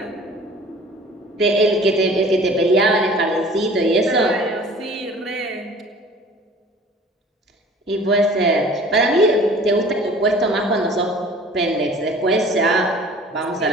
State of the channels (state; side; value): normal; both; correlation 0.47